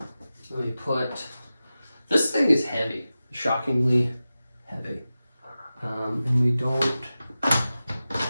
Let me put, this thing is heavy, shockingly heavy. And we don't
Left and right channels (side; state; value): both; inverted; correlation -0.95